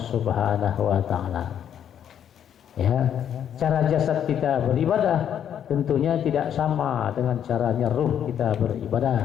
wa taala. Ya, cara jasad kita beribadah tentunya tidak sama dengan caranya ruh kita beribadah.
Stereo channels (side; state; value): right; quieter; 9.3 dB